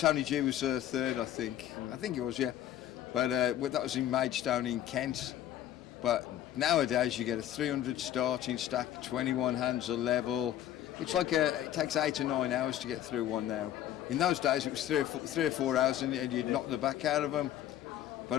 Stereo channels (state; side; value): quieter; right; 11.8 dB